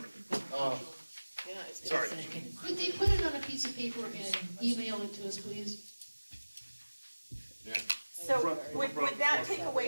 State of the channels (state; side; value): inverted; both; correlation -1.00